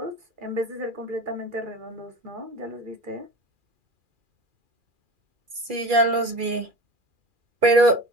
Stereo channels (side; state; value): left; late; 2.4 ms